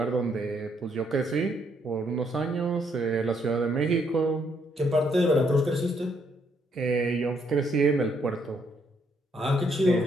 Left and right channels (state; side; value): normal; both; correlation 0.72